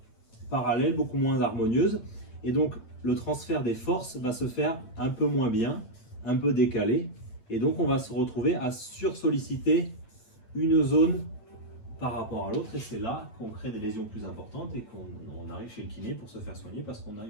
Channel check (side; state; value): right; late; 8.8 ms